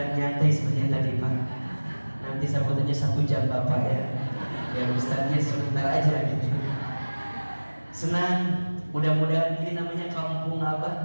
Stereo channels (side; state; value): both; inverted; correlation -1.00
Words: nyantai sepertinya tadi Pak. Nanti sambutannya 1 jam Bapak ya. Ya Ustaznya sebentar aja gitu. Senang, mudah-mudahan ini namanya kampung